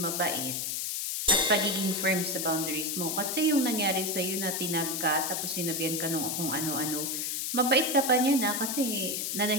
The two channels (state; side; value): noise; left; hiss, 2 dB below the sound